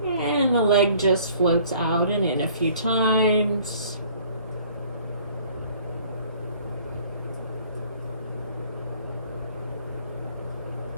and the leg just floats out and in a few times.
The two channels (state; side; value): inverted; both; correlation -0.56